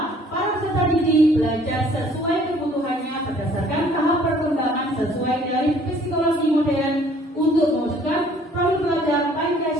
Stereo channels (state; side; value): normal; both; correlation 0.57